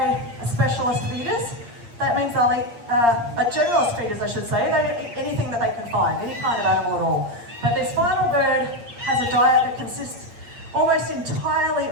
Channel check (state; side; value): late; left; 8.6 ms